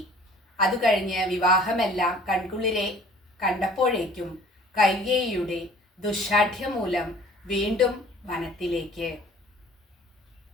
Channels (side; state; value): both; normal; correlation 0.51